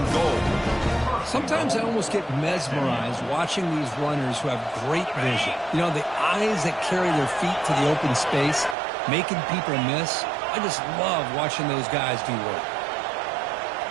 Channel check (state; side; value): drops out; left; at 8.8 s